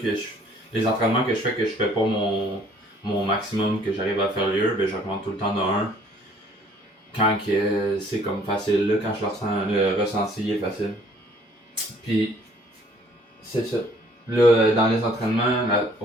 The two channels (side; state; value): both; normal; correlation 0.59